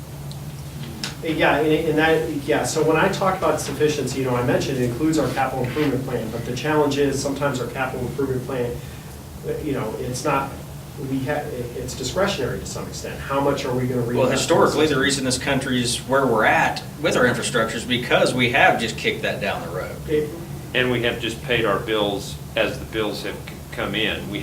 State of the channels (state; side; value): identical; both; correlation 1.00